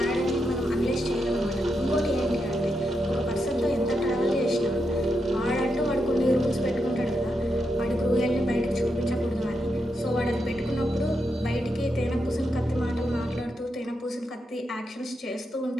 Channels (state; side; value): normal; both; correlation 0.84